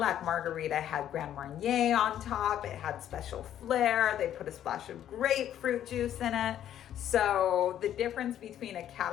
margarita had Grand Marnier on top. It had special flair. They put a splash of grapefruit juice in it. So the difference between a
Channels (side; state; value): right; quieter; 10.9 dB